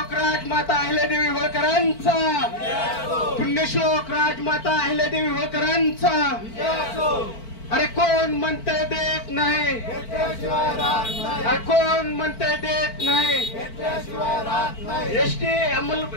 राजमाता अहिल्यादेवी होळकरांचा, पुण्यश्लोक राजमाता अहिल्यादेवी होळकरांचा। अरे कोण म्हणते देत नाही, अरे कोण म्हणते देत नाही।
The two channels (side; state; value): right; late; 4.5 ms